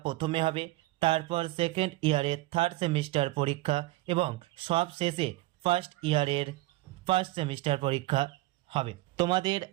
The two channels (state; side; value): quieter; left; 19.0 dB